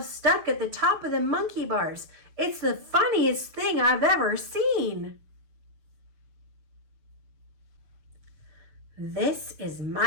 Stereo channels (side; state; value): left; late; 6.7 ms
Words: stuck at the top of the monkey bars. It's the funniest thing I've ever seen." "This is